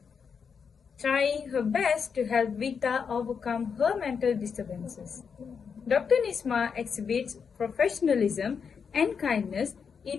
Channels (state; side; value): quieter; right; 6.3 dB